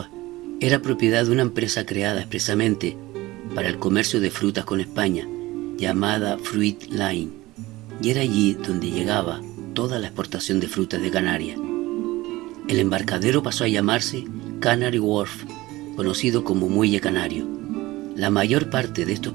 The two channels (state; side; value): quieter; left; 19.0 dB